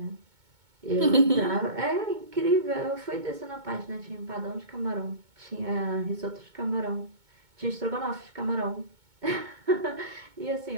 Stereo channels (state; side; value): late; left; 2.2 ms